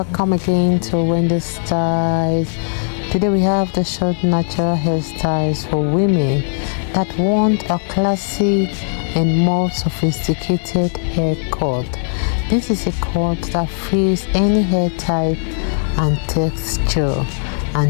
again to Wendy Styles. Today we have the short natural hairstyles for women that want a classy and more sophisticated haircut. This is a cut that fits any hair type and texture,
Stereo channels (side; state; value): right; silent; digital silence